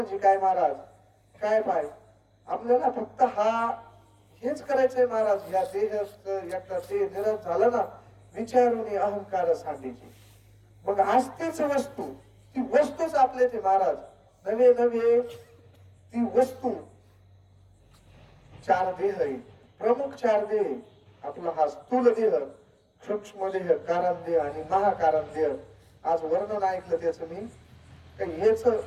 काय महाराज? काय पाय? आपल्याला फक्त हा हेच करायचंय महाराज. या देहाचं एकदा ते निरस झालं ना, विचारून अहंकार सांगायची. मग असतेच वस्तू, ती वस्तूच आपले ते महाराज. नवे नवे ती वस्तू चार देह आहे, प्रमुख चार देह आहे. आपला हा स्थूल देह, सूक्ष्म देह, कारण देह आणि महाकारण देह. आज वर्णन ऐकलं त्याचं मी, काही हेच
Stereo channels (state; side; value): identical; both; correlation 1.00